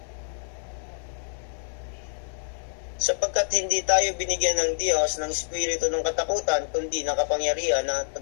Sapagkat hindi tayo binigyan ng Diyos ng espiritu ng katakutan, kundi ng kapangyarihan, ng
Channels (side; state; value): right; silent; digital silence